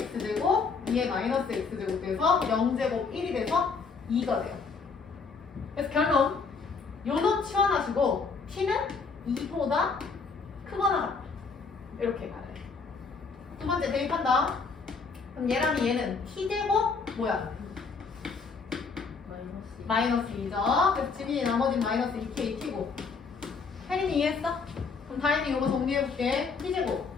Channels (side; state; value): right; quieter; 4.9 dB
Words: x제곱, 2의 마이너스 x제곱 돼서 0제곱 1이 돼서 2가 돼요. 그래서 결론 요놈 치환하시고 t는 2보다 크거나 같다. 이렇게 가야 돼. 두 번째 대입한다. 그럼 얘랑 얘는 t제곱 뭐야? 마이너스 2죠. 그래서 지민이 나머지는 마이너스 2k t고. 혜린이 이해했어? 그럼 다행히 이거 정리해볼게. t제곱